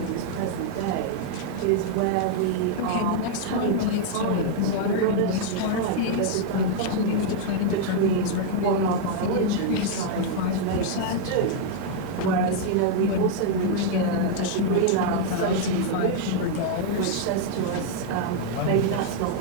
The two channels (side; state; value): both; different; correlation 0.00